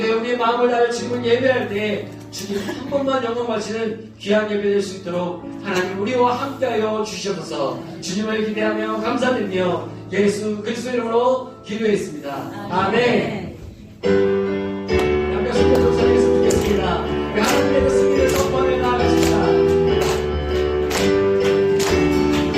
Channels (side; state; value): both; identical; correlation 1.00